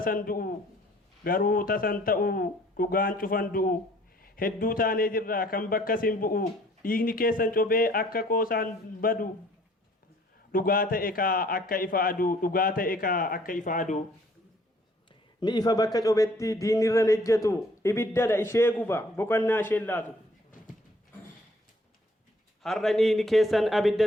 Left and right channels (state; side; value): normal; both; correlation 0.59